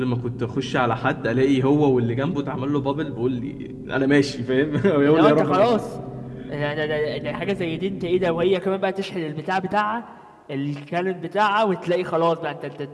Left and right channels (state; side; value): identical; both; correlation 1.00